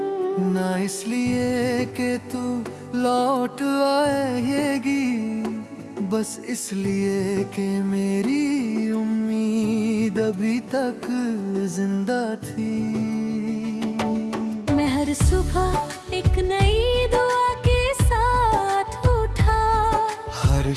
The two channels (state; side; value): identical; both; correlation 1.00